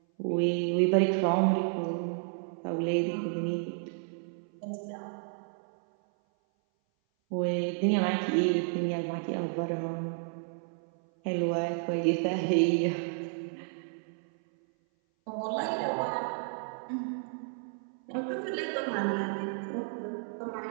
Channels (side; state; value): left; silent; 57 dB below the other